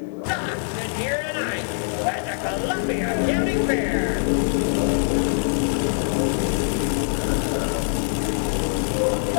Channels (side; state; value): right; silent; digital silence